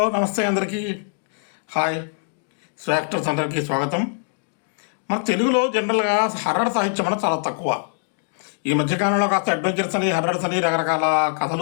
నమస్తే అందరికీ. Hi. Actors అందరికీ స్వాగతం. మన తెలుగులో జనరల్గా హర్రర్ సాహిత్యం అనేది చాలా తక్కువ. ఈ మధ్యకాలంలో కాస్త అడ్వెంచర్స్ అని హర్రర్స్ అని రకరకాల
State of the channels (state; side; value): silent; right; 64 dB below the other